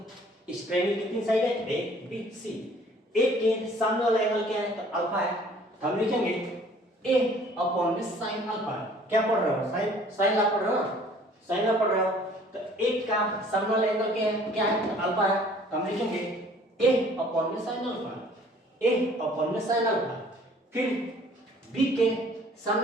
इस ट्रायंगल कितनी साइड है? A B C. ए के सामने वाला एंगल क्या है? तो अल्फा है। तो हम लिखेंगे ए अपॉन में साइन अल्फा। क्या पढ़ रहे हो? साइन लॉ पढ़ रहे हो? साइन लॉ पढ़ रहे हो तो एक का सामने वाला एंगल क्या है? तो अल्फा है। तो हम लिखेंगे ए अपॉन में साइन अल्फा, ए अपॉन में साइन अल्फा। फिर बी के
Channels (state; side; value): normal; both; correlation 0.54